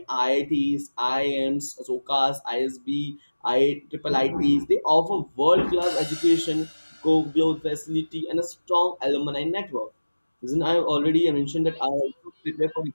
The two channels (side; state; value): both; inverted; correlation -1.00